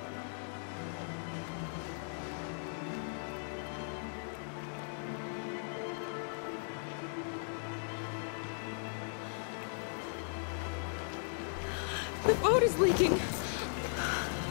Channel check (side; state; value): right; silent; digital silence